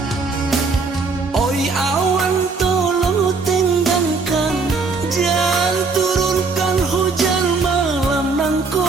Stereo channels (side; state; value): left; quieter; 4.4 dB